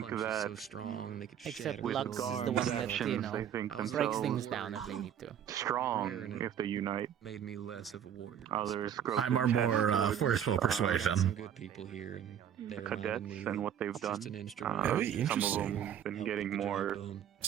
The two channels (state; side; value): quieter; left; 9.3 dB